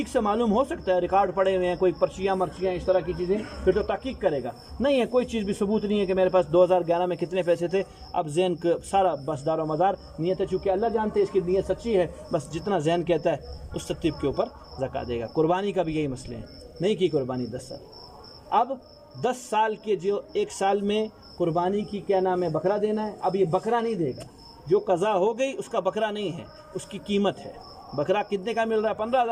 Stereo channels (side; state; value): both; identical; correlation 1.00